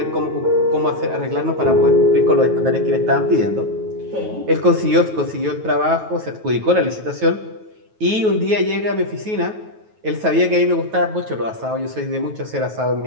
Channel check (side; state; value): left; late; 9.3 ms